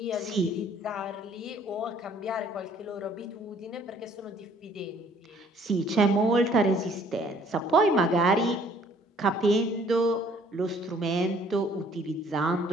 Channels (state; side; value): normal; both; correlation 0.59